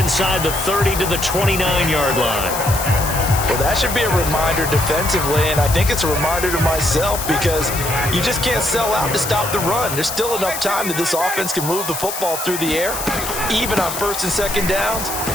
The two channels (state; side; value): noise; left; hiss, 6 dB below the sound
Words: the 30 to the 29-yard line. Well, that should be a reminder defensively, and I think it's a reminder to myself because you just can't sell out to stop the run. There's still enough time that this offense can move the football through the air, even on 1st and 2nd downs,